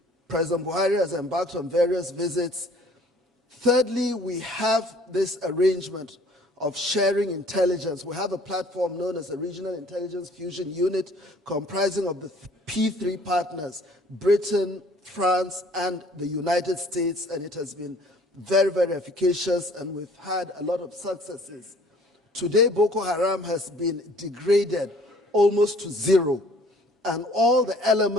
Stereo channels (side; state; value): both; normal; correlation 0.54